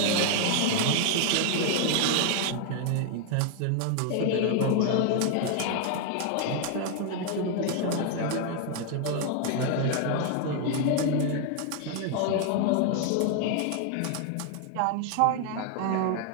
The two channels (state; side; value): different; both; correlation 0.00